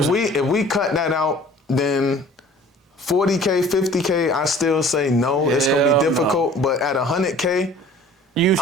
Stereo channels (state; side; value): normal; both; correlation 0.49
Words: we cut that out, then 40K, 50K, I still say no. It's gonna be difficult. No. But at 100K,